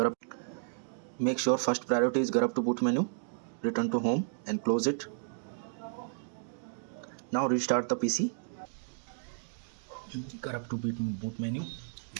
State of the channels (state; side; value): silent; left; 56 dB below the other